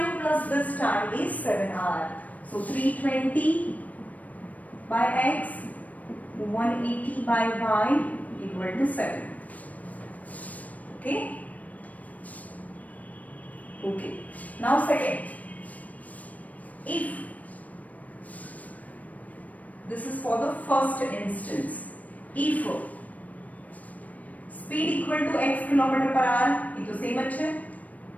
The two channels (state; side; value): late; right; 0.072 ms